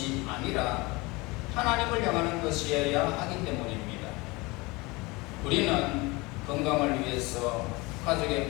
아니라 하나님을 향하는 것이어야 하기 때문입니다. 우리는 건강을 위해서, 가족의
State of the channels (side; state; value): right; quieter; 24.2 dB